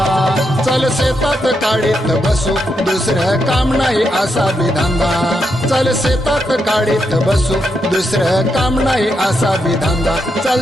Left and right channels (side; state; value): both; normal; correlation 0.82